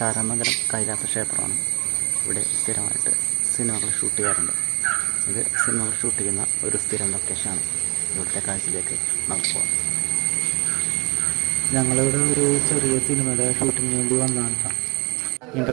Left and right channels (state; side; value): quieter; left; 26.1 dB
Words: കൈലാസ ക്ഷേത്രമാണ്. ഇവിടെ സ്ഥിരമായിട്ട് സിനിമകൾ ഷൂട്ട് ചെയ്യാറുണ്ട്. ഇത് സിനിമകൾ ഷൂട്ട് ചെയ്യുന്ന ഒരു സ്ഥിരം ലൊക്കേഷനാണ്. ഇവിടുത്തെ കാഴ്ചയിലേക്ക് നമുക്ക് പോകാം. ഞങ്ങളിവിടെ ഒരു ചെറിയ സിനിമയുടെ ഷൂട്ടിങ്ങിന് വേണ്ടി വന്നതാണ്.